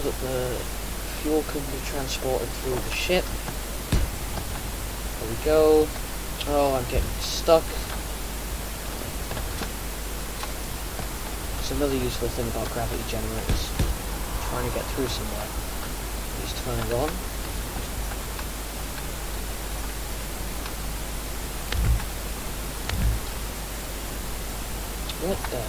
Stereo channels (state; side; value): identical; both; correlation 1.00